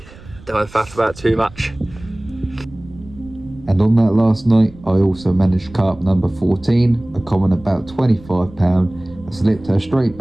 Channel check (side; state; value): right; noise; rumble, 20 dB below the sound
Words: Don't faff about too much. And on that last night, I also managed carp number 14, a common about 25 pound. I slipped her straight